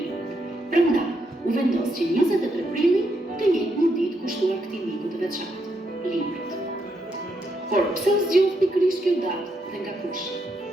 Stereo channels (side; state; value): both; normal; correlation 0.79